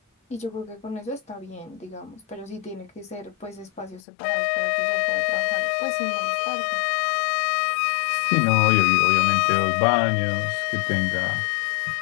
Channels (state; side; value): drops out; right; at 4.0 s